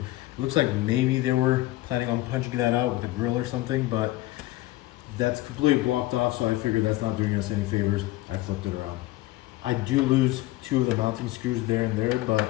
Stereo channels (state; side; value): quieter; right; 17.3 dB